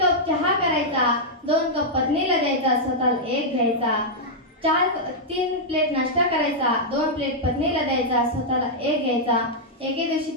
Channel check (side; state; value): both; normal; correlation -0.06